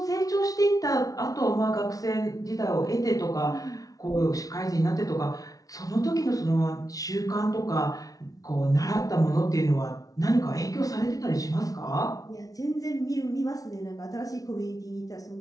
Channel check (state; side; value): late; right; 0.18 ms